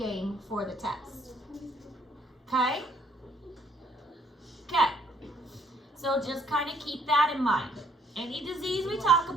for the test. Okay? Okay. So just kind of keep that in mind. Any disease we talk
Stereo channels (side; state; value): both; normal; correlation 0.66